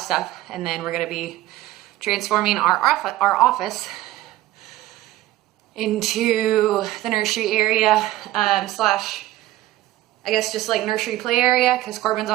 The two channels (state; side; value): quieter; left; 15.7 dB